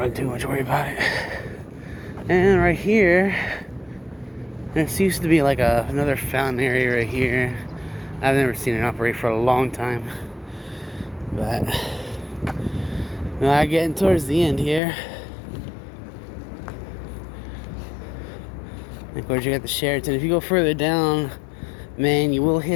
too much worry about it. And right here, there used to be like another fountain area right here. I've never seen it operate for a long time, but now getting towards the end here. And of course, you got the Sheraton. If you go further down, man, you will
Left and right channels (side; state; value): right; drops out; at 14.8 s